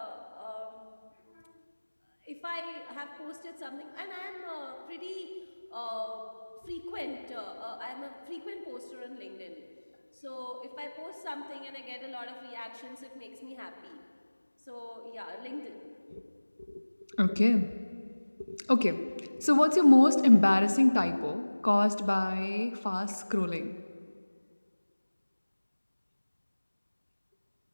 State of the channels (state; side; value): inverted; both; correlation -1.00